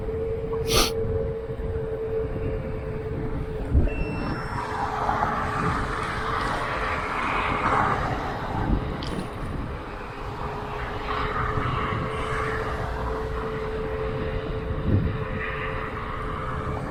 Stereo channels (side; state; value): both; identical; correlation 1.00